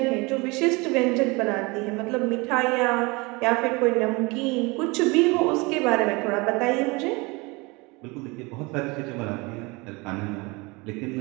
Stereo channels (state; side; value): quieter; left; 25.8 dB